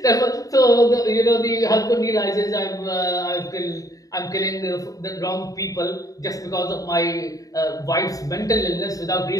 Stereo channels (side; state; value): right; late; 0.17 ms